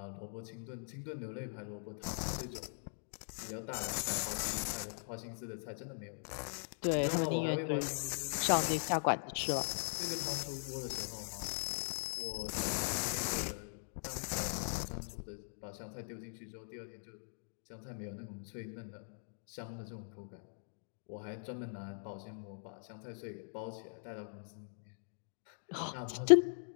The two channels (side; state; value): right; silent; digital silence